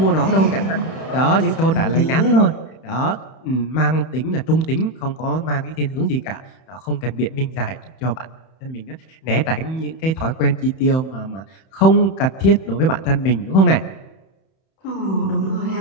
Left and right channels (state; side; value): late; right; 31 ms